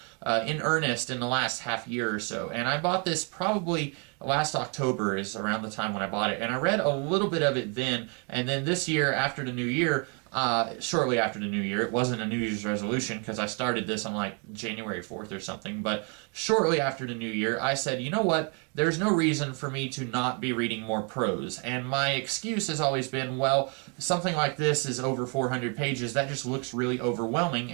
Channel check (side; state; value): left; quieter; 36.3 dB